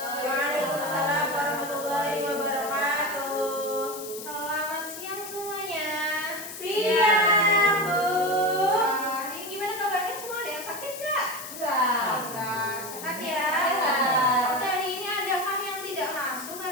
warahmatullahi wabarakatuh. Selamat siang semuanya. Siang, Bu. Ini gimana kabarnya semua? Ada yang sakit nggak? Enggak. Sehat ya? Sehat. Oke, hari ini adakah yang tidak masuk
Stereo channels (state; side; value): noise; left; hiss, 11 dB below the sound